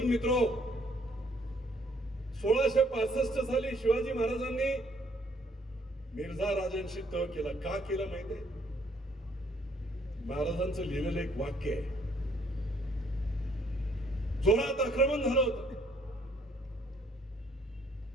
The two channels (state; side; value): normal; both; correlation 0.65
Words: मित्रो, 1665 साली शिवाजी महाराजांनी मिर्झा राजांशी तह केला. का केला माहितीये? महाराजांचं लिहिलेलं एक वाक्य आहे, जोरात आक्रमण झालं होतं,